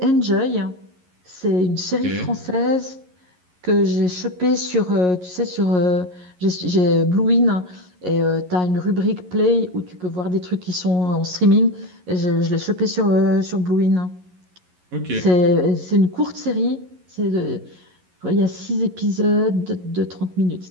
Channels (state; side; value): late; left; 11 ms